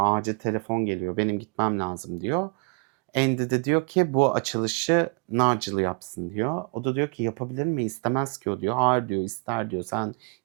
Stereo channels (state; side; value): quieter; left; 35.5 dB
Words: Acil telefon geliyor. Benim gitmem lazım diyor. Andy de diyor ki bu açılışı Nigel yapsın diyor. O da diyor ki yapabilir mi? İstemez ki o diyor. Hayır diyor, ister diyor. Sen